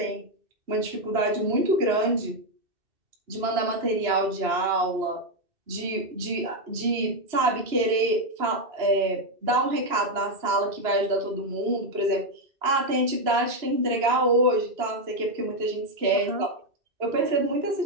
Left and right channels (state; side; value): late; left; 2.9 ms